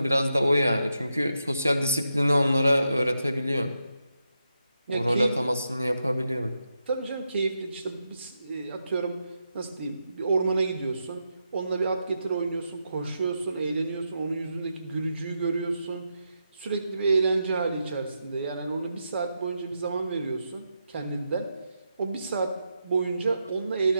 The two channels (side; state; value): both; inverted; correlation -0.85